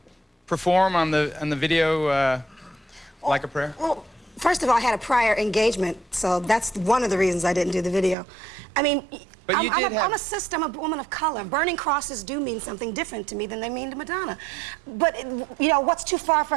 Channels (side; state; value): left; drops out; at 8.2 s